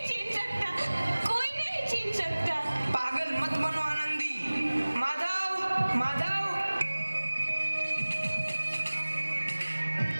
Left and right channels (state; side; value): inverted; both; correlation -1.00